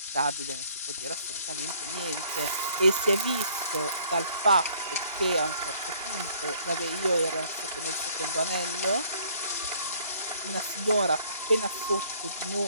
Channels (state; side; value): inverted; both; correlation -0.60